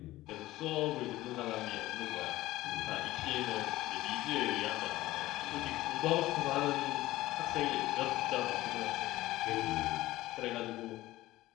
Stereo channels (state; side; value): quieter; right; 16.9 dB